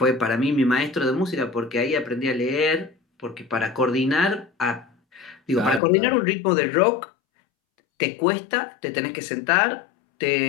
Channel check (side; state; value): right; drops out; at 5.8 s